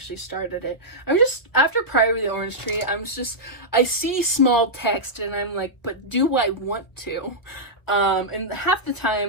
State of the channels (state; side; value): late; right; 1.2 ms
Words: started it. I'm just, after Priory of the Orange Tree, I see small text and I'm like, but do I want to? And half the